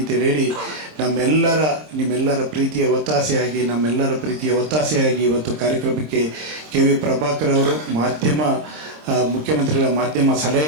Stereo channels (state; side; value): late; left; 26 ms